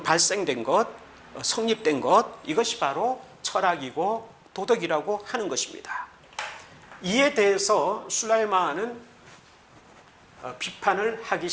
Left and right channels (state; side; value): identical; both; correlation 1.00